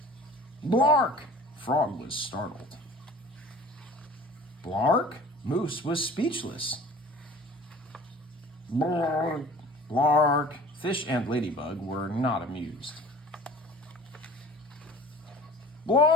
"Blark!" Frog was startled. "Blark?" Moose was speechless. "Blark, blark." Fish and Ladybug were not amused.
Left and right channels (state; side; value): normal; both; correlation 0.44